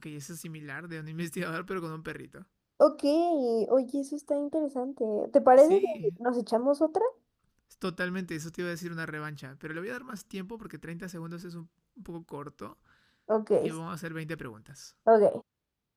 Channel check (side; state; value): both; identical; correlation 1.00